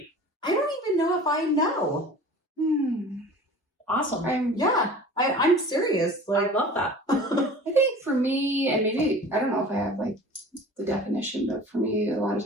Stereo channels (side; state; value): both; normal; correlation 0.42